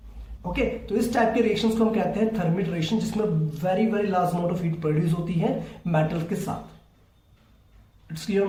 ओके, तो इस टाइप के रिएक्शंस को हम कहते हैं थर्मिट रिएक्शन, जिसमें very very large amount of heat produce होती है मेटल के साथ। It's clear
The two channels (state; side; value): identical; both; correlation 1.00